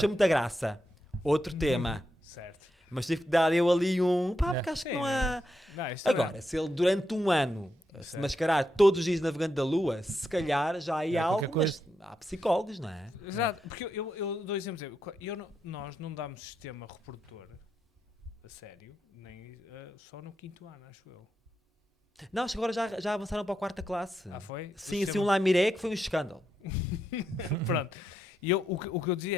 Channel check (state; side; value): normal; both; correlation 0.83